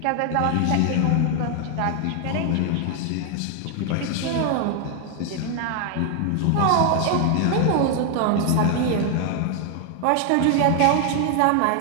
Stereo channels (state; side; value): different; both; correlation 0.00